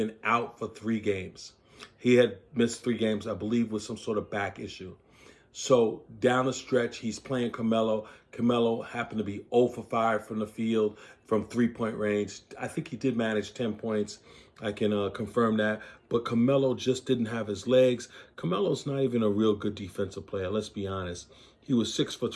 out for 3 games. He had missed 3 games, I believe, with some sort of back issue. So down the stretch, he's playing Carmelo. Carmelo happened to be 0 for 5 from the field, from 3-point range. I think he did manage 10 points. I can confirm that. But Carmelo just didn't have his legs. Carmelo's not even a real good defensive player, let's be honest. He was 6 for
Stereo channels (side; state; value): both; identical; correlation 1.00